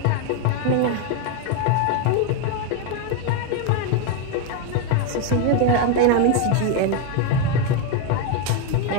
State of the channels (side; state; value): both; different; correlation 0.02